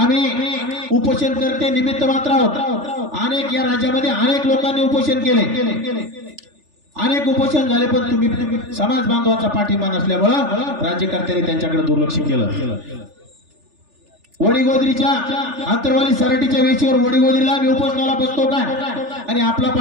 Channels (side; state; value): left; late; 3.4 ms